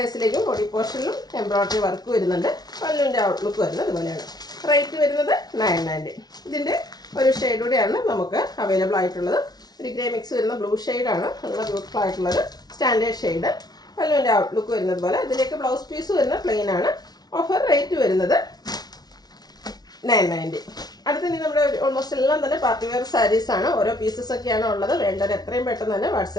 ബോഡി പോർഷനിലും എംബ്രോയ്ഡറി വർക്ക് വരുന്നുണ്ട്. പല്ലുവിൻ്റെ ഔട്ട്ലുക്ക് വരുന്നത് ഇതുപോലെയാണ്. റേറ്റ് വരുന്നത് 990. ഇതിൻ്റെ ഒരു ഷെയ്ഡ് കൂടെയാണ് നമുക്ക് അവൈലബിൾ ആയിട്ടുള്ളത്. ഒരു ഗ്രേ മിക്സ് വരുന്ന ബ്ലൂ ഷെയ്ഡാണ്. നല്ല ബ്യൂട്ടിഫുൾ ആയിട്ടുള്ളത് സ്റ്റാൻഡേർഡ് ഷെയ്ഡ്. പല്ലുവിൻ്റെ ഔട്ട്ലുക്ക് വരുന്നത് പോലെ. ഇതിലേക്ക് ബ്ലൗസ് പീസ് വരുന്ന പ്ലെയിൻ ആണ്. ഓഫർ റേറ്റ് വരുന്നത് 990. അടുത്തത് നമ്മുടെ ഓൾമോസ്റ്റ് എല്ലാം തന്നെ പാർട്ടി വെയർ സാരീസാണ്. ഓരോ പീസസ് ഒക്കെയാണ് ഉള്ളത്. വേണ്ടത് എത്രയും പെട്ടെന്ന് തന്നെ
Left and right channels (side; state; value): right; late; 0.19 ms